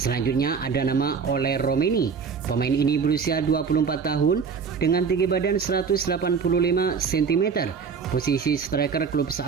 ada nama Ole Romeni. Pemain ini berusia 24 tahun dengan tinggi badan 185 cm. Posisi striker klub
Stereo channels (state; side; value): quieter; left; 5.9 dB